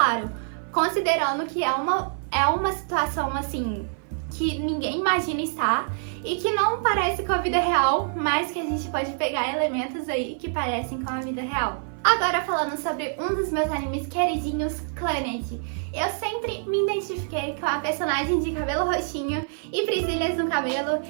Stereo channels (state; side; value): silent; left; 56 dB below the other